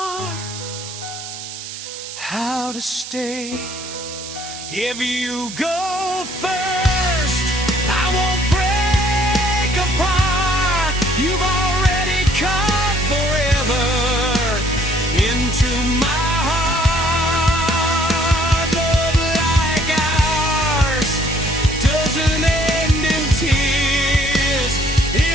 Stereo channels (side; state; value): right; noise; hiss, 10 dB below the sound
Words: how to stay. If you go first, I won't break